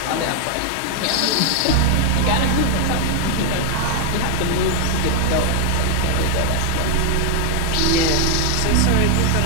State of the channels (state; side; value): different; both; correlation 0.00